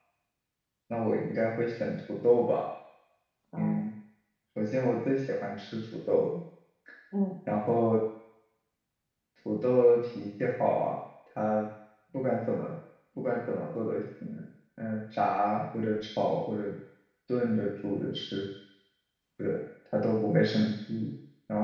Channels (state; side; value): identical; both; correlation 1.00